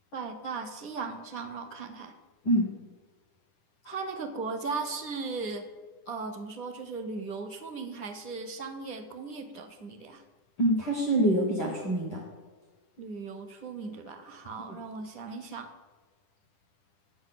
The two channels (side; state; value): right; late; 10 ms